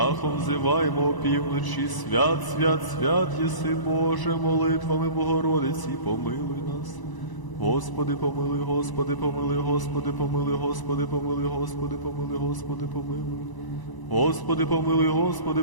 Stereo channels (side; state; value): right; late; 1.0 ms